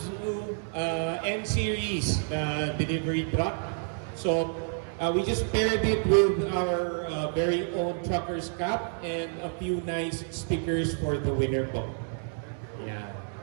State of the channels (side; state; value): left; silent; 59 dB below the other